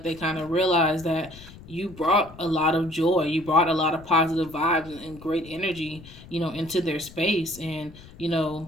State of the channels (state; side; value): noise; left; rumble, 19 dB below the sound